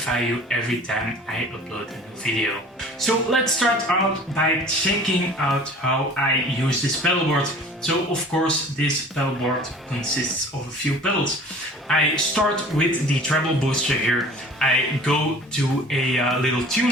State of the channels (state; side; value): normal; both; correlation 0.46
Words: you every time I upload a new video. So let's start out by checking out how I use this pedalboard. So of course this pedalboard consists of a few pedals. I start with the treble booster here. I go to a little